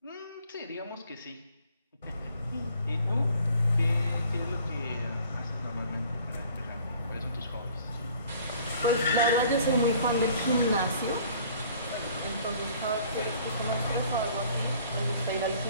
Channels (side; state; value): both; inverted; correlation -0.54